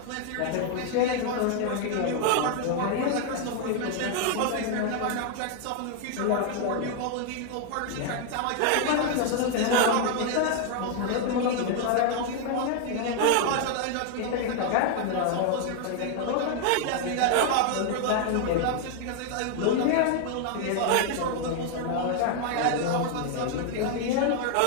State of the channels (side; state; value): both; different; correlation 0.00